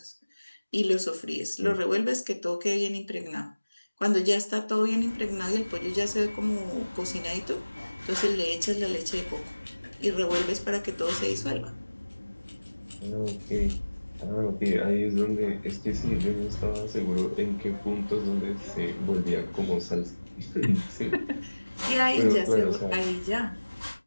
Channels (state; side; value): inverted; both; correlation -1.00